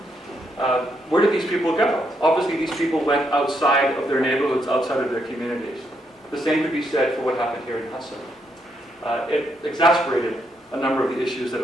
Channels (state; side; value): normal; both; correlation 0.77